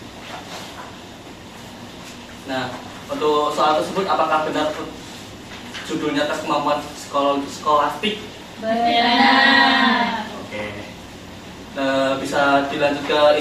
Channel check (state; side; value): identical; both; correlation 1.00